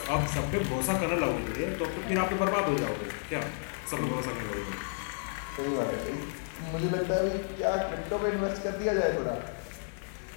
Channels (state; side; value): silent; right; digital silence